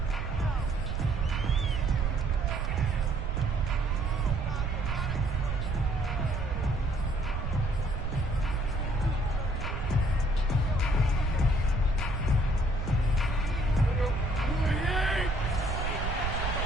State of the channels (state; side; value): noise; right; rumble, 2 dB below the sound